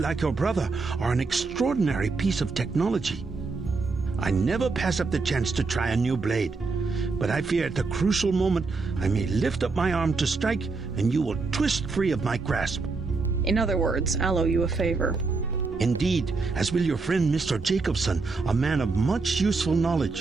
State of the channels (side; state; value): left; quieter; 4.1 dB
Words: your brother, are an extraordinary piece of technology. I never pass up the chance to try a new blade, but I fear at the crucial moment I may lift up my arm to strike and you will twist free of my grasp. In other words, I'll owe you a favor. Indeed, as will your friend Mr. Jacobson, a man of much useful